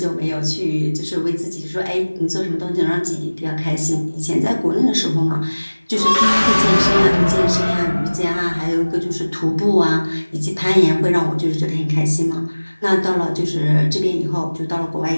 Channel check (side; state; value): both; inverted; correlation -1.00